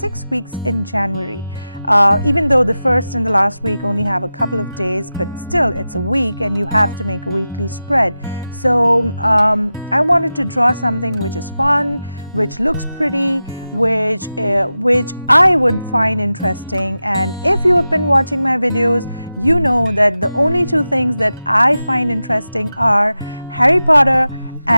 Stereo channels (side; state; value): both; inverted; correlation -0.93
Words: weeks in January. Even though the first and the last week only have a couple of days, but still it's a week and you have to make a weekly spread. So I wanted to draw something which is fun, which looks pretty, which I would find interesting. And if you have been watching my videos, you know that the only two things that I find interesting are Harry Potter